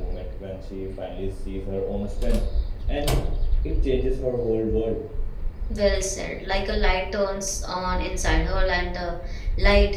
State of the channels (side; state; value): both; identical; correlation 1.00